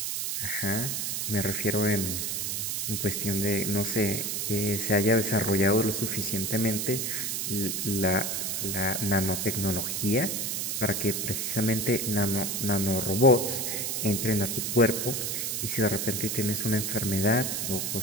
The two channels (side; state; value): right; noise; hiss, 1 dB below the sound